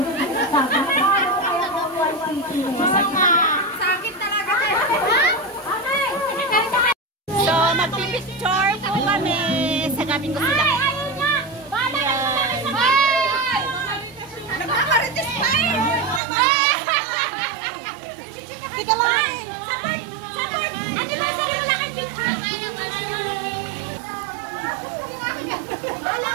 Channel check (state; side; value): drops out; left; at 16.2 s